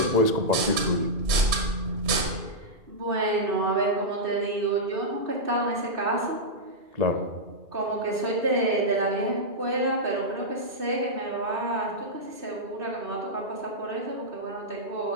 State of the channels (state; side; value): late; left; 3.0 ms